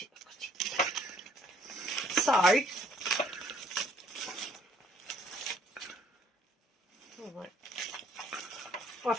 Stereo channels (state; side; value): normal; both; correlation 0.62